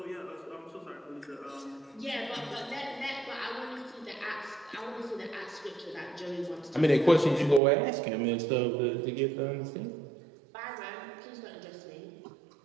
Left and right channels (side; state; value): left; drops out; at 7.6 s